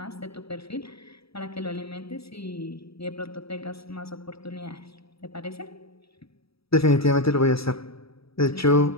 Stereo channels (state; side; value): late; right; 0.77 ms